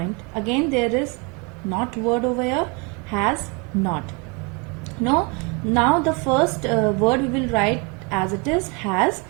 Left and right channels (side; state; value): left; quieter; 31.1 dB